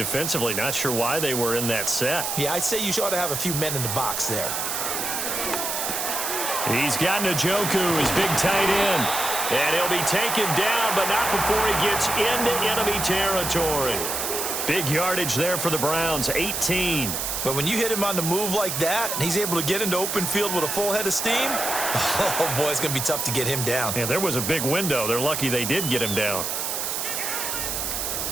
Not sure why they were in that set. Yeah, I'd say you ought to have a few men in the box there. He's got Njoku, his big tight end. And he'll be taken down, but not before he gets into enemy territory. Big yardage there for the Browns, 18. But when you hit him on the move like that, and he's able to get into open field with a full head of steam, oh, boy, it's going to be tough to get him down. Yeah, there was a big window. They're lucky they did get him down.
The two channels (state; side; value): noise; right; hiss, 2 dB below the sound